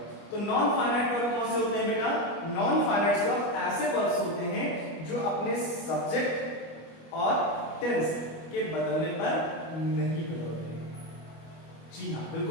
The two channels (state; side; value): late; right; 25 ms